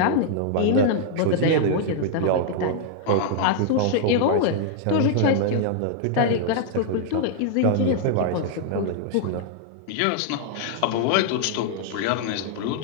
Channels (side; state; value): both; different; correlation -0.01